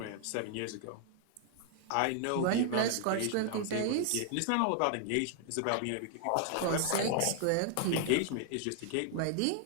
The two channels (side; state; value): both; different; correlation 0.00